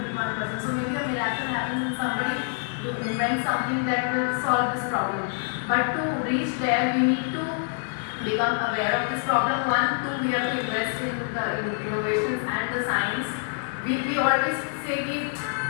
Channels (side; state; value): right; silent; 61 dB below the other